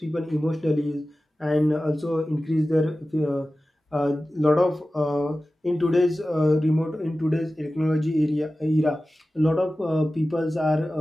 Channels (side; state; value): both; normal; correlation 0.95